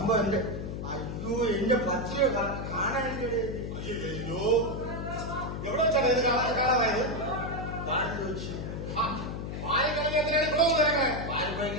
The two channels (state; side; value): noise; left; hum, 5 dB below the sound